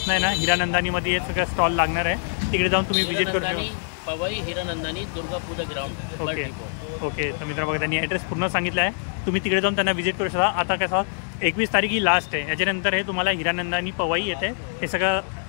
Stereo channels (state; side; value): silent; right; digital silence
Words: आहे ना हीरानंदानीमध्ये हे सगळं स्टॉल लागणार आहे. तिकडे जाऊन तुम्ही विजिट करू शकता. Powai Hiranandani Durga Puja ground. Okay okay. तर मित्रांनो बघा, त्यांनी ॲड्रेस पूर्ण सांगितला आहे. तुम्ही तिकडे जाऊन त्यांना विजिट करू शकता. आता कसं 21 तारीख ही लास्ट आहे. याच्यानंतर हे तुम्हाला हीरानंदानी पवई येते हे सगळं